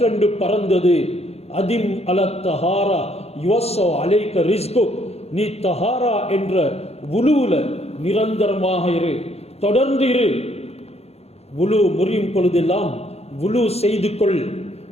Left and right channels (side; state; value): right; late; 0.30 ms